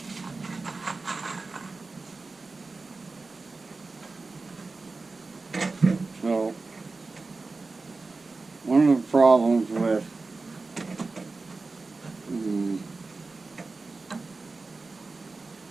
So, one of the problems with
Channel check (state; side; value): quieter; left; 3.8 dB